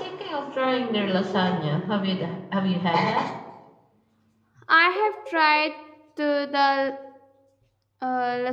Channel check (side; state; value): both; identical; correlation 1.00